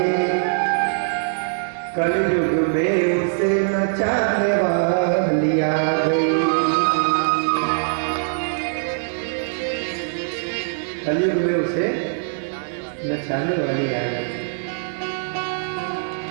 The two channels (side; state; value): left; silent; digital silence